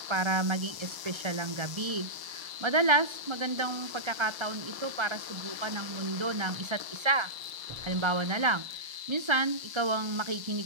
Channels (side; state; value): left; late; 1.0 ms